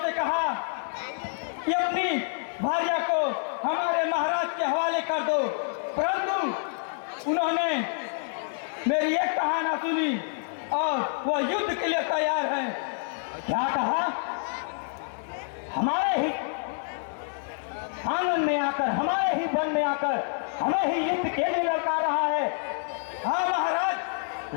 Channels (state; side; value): silent; right; 59 dB below the other